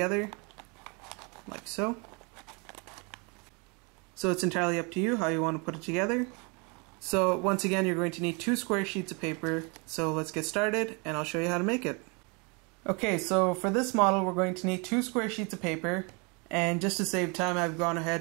like so. So it's entirely up to you how you want to put it together. So once again, you're going to need 2 square sheets of paper. So let's get started and I'll show you how to make it. Okay, so for this model we're going to need 2 square sheets of paper, and just to save time I've gone ahead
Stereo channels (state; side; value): quieter; left; 31.8 dB